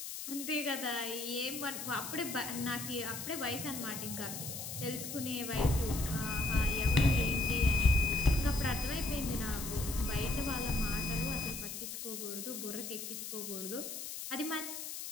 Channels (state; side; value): noise; left; hiss, 7 dB below the sound